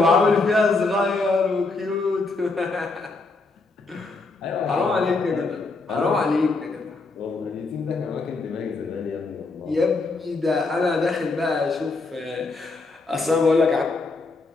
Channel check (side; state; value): right; quieter; 3.7 dB